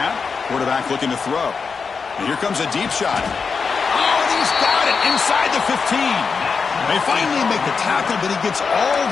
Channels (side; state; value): right; quieter; 5.3 dB